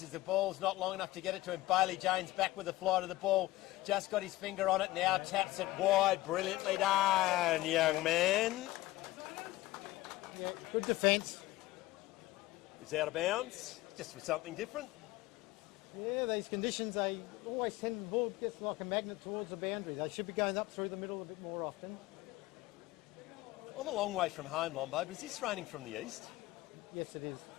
as the ball's not long enough to get it to him. Bailey James back with the flight of the ball. Just got his finger on it, now taps it wide. Brilliantly done, young man. Yeah, good defence. He's out of bounds, just for something different. Yeah, these conditions, they always tend the ball gets like a magnet towards the boundary. They should be going up through the middle a bit more often. I'm a long way from home, Lombo, but is this raining from the east? Yes, it is.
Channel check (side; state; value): right; quieter; 17.7 dB